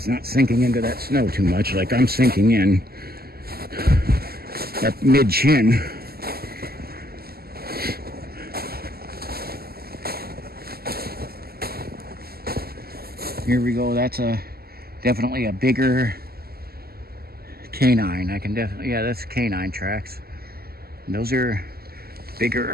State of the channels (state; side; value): late; left; 0.45 ms